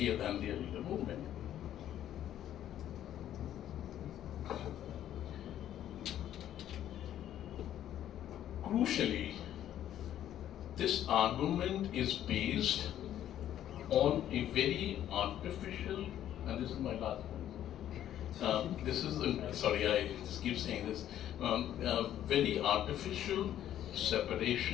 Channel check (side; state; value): right; quieter; 11.4 dB